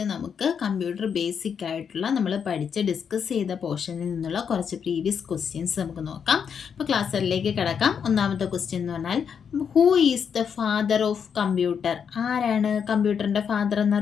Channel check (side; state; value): right; quieter; 7.1 dB